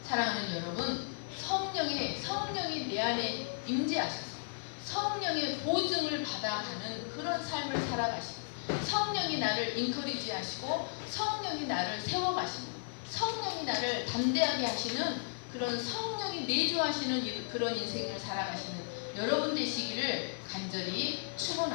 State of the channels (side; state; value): right; silent; 55 dB below the other